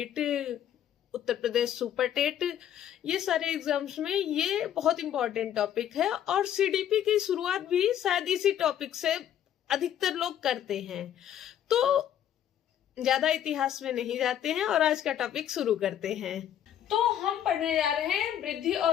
Uttar Pradesh super TET, ये सारे एग्जाम्स में ये बहुत इंपॉर्टेंट टॉपिक है। और CDP की शुरुआत भी शायद इसी टॉपिक से अधिकतर लोग करते हैं। तो ज्यादा इतिहास में नहीं जाते हैं और आज का टॉपिक शुरू करते हैं। तो हम पढ़ने जा रहे हैं वृद्धि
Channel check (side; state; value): right; quieter; 10.4 dB